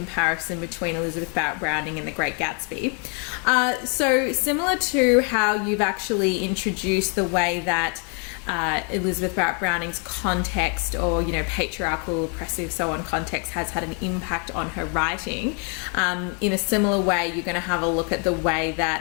between Elizabeth Barrett Browning and The Great Gatsby. So similar to how you've actually introduced the way that Elizabeth Barrett Browning's context, or patriarchal, oppressive, so on context has had an impact on her writing. In a similar way, you're going to have a look at the way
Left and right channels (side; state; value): right; quieter; 38.6 dB